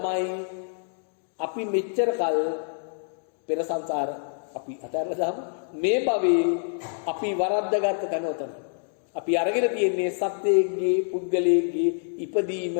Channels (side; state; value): right; silent; digital silence